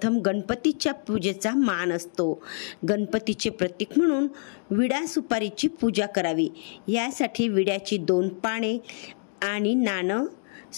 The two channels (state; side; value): silent; right; 61 dB below the other